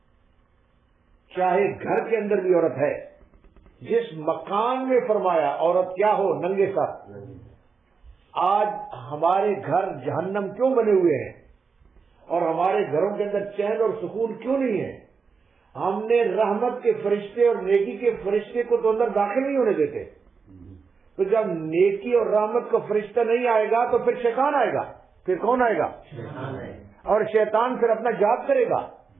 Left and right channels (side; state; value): left; quieter; 5.2 dB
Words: چاہے گھر کے اندر بھی عورت ہے، جس مکان میں فرمایا عورت کیا ہو؟ ننگے سر۔ آج ہمارے گھر جہنم کیوں بنے ہوئے ہیں اور ہمارے گھروں کے اندر چین اور سکون کیوں نہیں ہے؟ ہم نے رحمت کے فرشتے اور نیکی کے فرشتے کو تو اندر داخل نہیں ہونے دیتے۔ تو جب نیکی اور رحمت کا فرشتہ نہیں آئے گا تو پھر شیطان آئے گا۔ پھر کون آئے گا؟ اور شیطان پھر اپنا جاد کرے گا۔